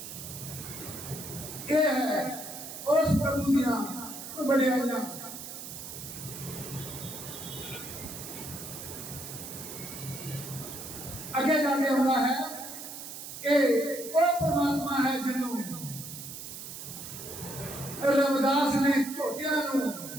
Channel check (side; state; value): right; noise; hiss, 10 dB below the sound